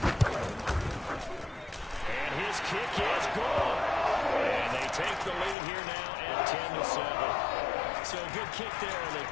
his kick is good. And they take the lead here now at 10-7. So a good kick there, and they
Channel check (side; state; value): right; drops out; at 5.6 s